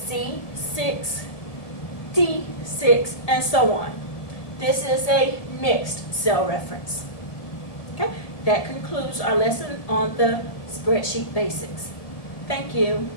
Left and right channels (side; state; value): right; late; 1.8 ms